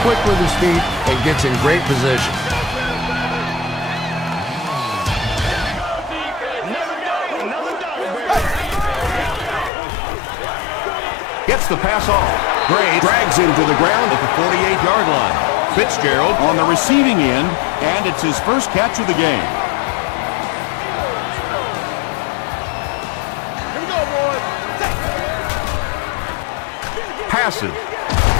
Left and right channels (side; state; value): right; drops out; at 9.7 s